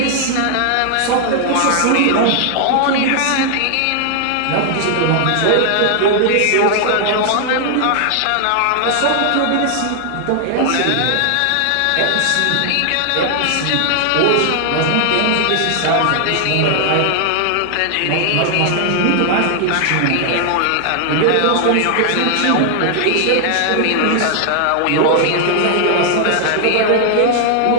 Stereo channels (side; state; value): both; different; correlation 0.00